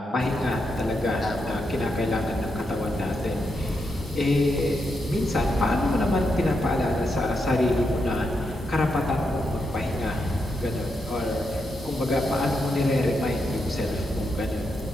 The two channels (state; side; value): normal; both; correlation 0.83